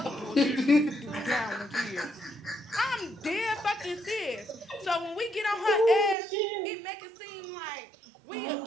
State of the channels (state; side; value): drops out; left; at 6.2 s